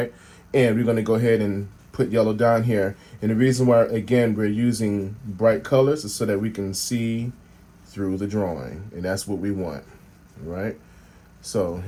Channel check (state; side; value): identical; both; correlation 1.00